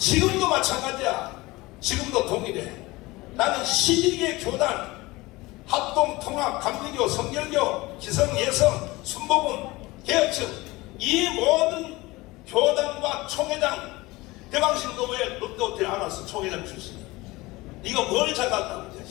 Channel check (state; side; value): quieter; right; 21.1 dB